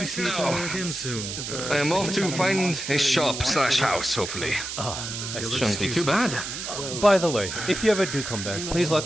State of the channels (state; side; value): noise; right; hiss, 6 dB below the sound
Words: see each other again soon. I am off to find a shop/house, hopefully. Shouldn't be too bad. By the way, if you ever do come back, please